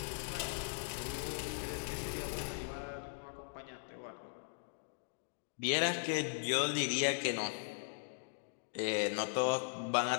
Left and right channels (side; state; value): right; silent; digital silence